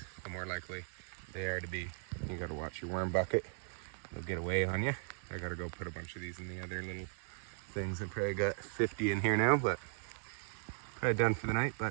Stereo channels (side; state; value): left; silent; 53 dB below the other